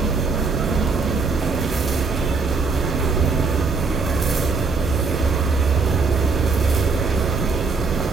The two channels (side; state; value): left; quieter; 4.4 dB